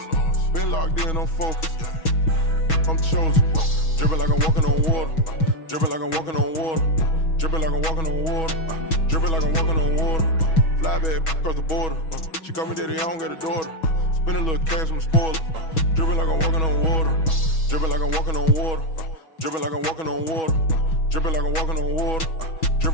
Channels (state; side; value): late; right; 6.2 ms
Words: Been locked in, I'm focused. I'm chosen. Dripping like I'm walking on water. Dripping like I'm walking on water. Dripping like I'm walking on water. Dripping like I'm walking on water. Fly back across the border. She call me daddy, I don't got a daughter. Spend a little cash, I'm a spoiler. Dripping like I'm walking on water. Dripping like I'm walking on water. Dripping like I'm walking on water. Dripping like I'm walking on water.